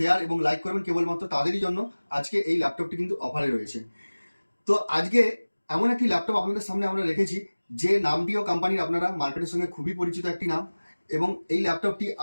এবং লাইক করবেন, কেবলমাত্র তাদেরই জন্য আজকে এই ল্যাপটপটি কিন্তু অফারে রয়েছে। তো আজকে এমন একটি ল্যাপটপ আপনাদের সামনে আমরা রেখেছি, যে নামটিও কোম্পানির আপনারা মার্কেটের সঙ্গে খুবই পরিচিত একটি নাম, এবং এই ল্যাপটপটি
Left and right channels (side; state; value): both; inverted; correlation -1.00